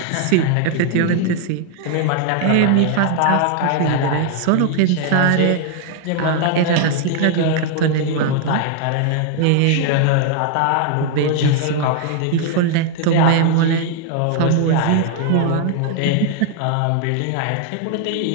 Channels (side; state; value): both; different; correlation 0.00